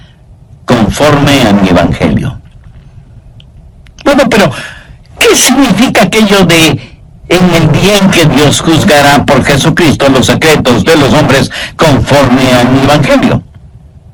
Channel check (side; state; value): both; identical; correlation 1.00